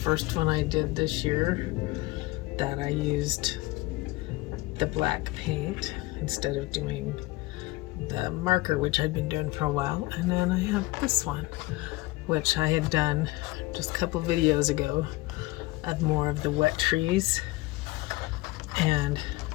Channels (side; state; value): right; quieter; 20.6 dB